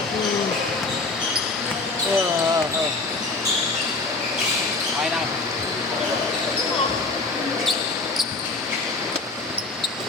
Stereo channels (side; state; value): right; quieter; 3.6 dB